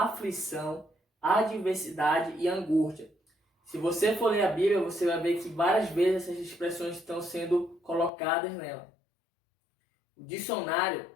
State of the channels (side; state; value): right; drops out; at 8.1 s